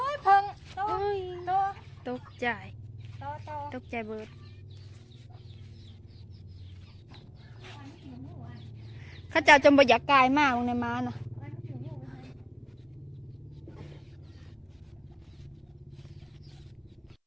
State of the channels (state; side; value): identical; both; correlation 1.00